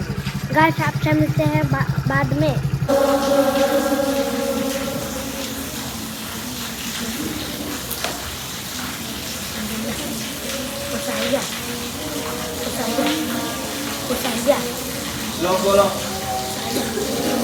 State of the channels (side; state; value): both; identical; correlation 1.00